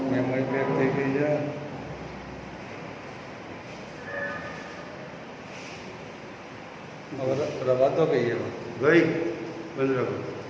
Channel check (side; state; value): both; identical; correlation 1.00